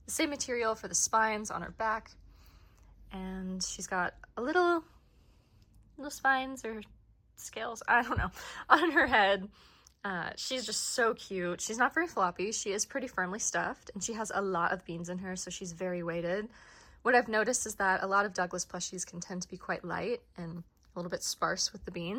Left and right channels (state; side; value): identical; both; correlation 1.00